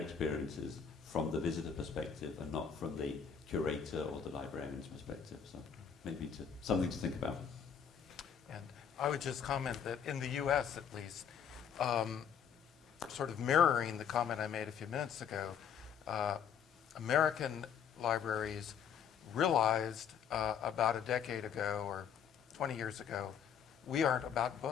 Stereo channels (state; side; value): quieter; right; 7.7 dB